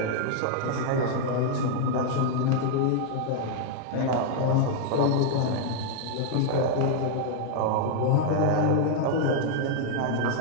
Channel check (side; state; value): both; different; correlation -0.01